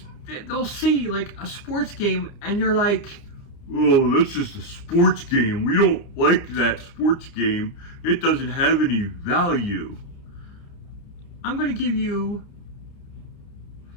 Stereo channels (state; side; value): late; right; 30 ms